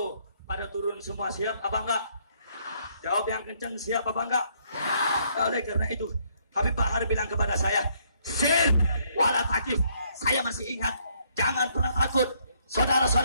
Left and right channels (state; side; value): inverted; both; correlation -0.69